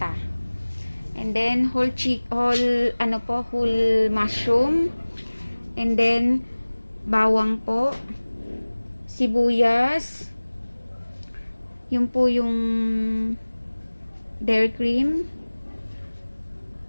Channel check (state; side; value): inverted; both; correlation -1.00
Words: And then whole mushroom. And then bawang po, sibuyas, yun po yung dairy cream,